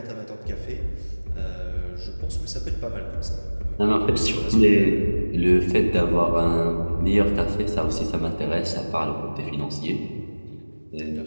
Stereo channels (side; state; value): both; inverted; correlation -1.00